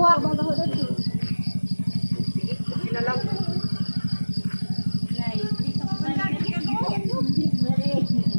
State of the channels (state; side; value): inverted; both; correlation -1.00